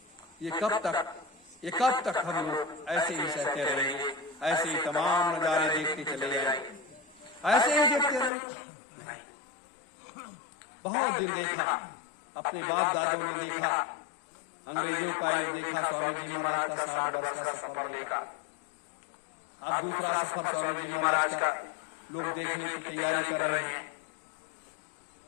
ये कब तक हम लोग ऐसे ही सहते रहेंगे? ऐसे ही तमाम नजारे देखते चले जाएंगे? ऐसे ही देखते रहेंगे? बहुत दिन देखा, अपने बाप दादों ने देखा, अंग्रेजों का युग देखा, स्वामी जी महाराज का 60 वर्ष का सफर देखा। अब दूसरा सफर स्वामी जी महाराज का लोग देखने की तैयारी कर रहे हैं।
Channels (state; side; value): drops out; right; at 8.3 s